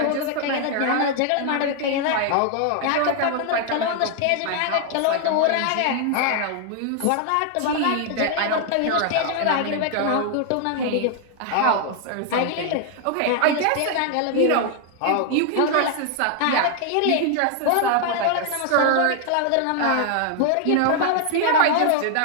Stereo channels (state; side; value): different; both; correlation 0.00